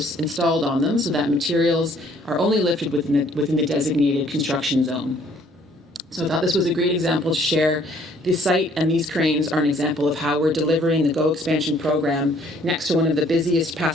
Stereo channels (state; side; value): normal; both; correlation 0.61